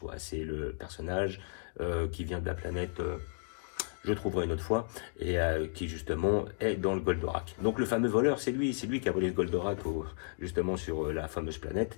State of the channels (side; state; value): right; silent; 55 dB below the other